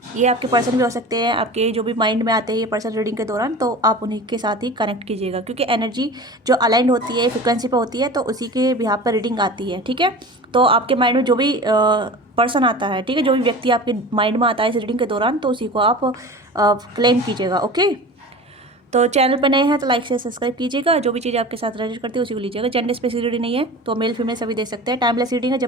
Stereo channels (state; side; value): normal; both; correlation 0.35